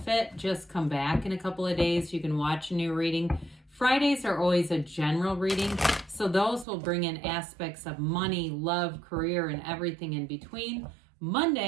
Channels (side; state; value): left; drops out; at 6.7 s